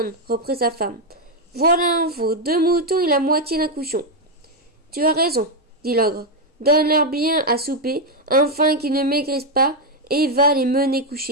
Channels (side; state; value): both; normal; correlation 0.03